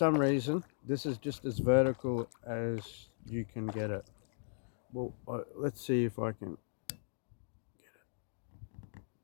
reason, this is just as vertical as you can get it. Well, let's see if I can get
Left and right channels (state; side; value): silent; right; digital silence